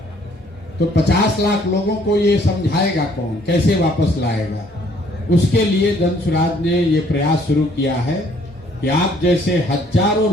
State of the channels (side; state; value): both; normal; correlation 0.62